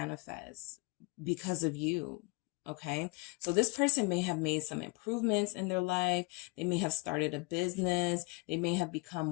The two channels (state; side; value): quieter; right; 28.0 dB